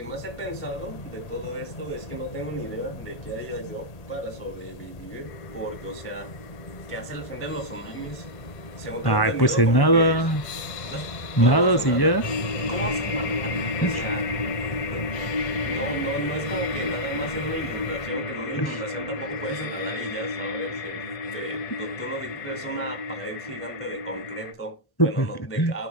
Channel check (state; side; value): late; right; 1.1 ms